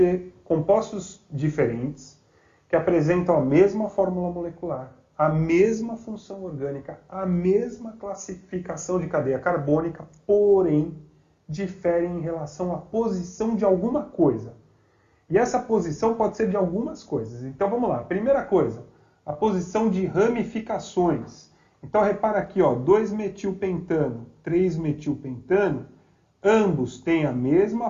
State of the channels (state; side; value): identical; both; correlation 1.00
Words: compostos diferentes que apresentam a mesma fórmula molecular, a mesma função orgânica, a mesma classificação de cadeia carbônica, porém diferem em relação à posição de alguma coisa. E essa posição pode ser de algumas coisas. Então vamos lá. Primeira coisa, a posição de ramificações. Então repara aqui, ó, 2-metilpentano, 3-metilpentano, ambos têm a mesma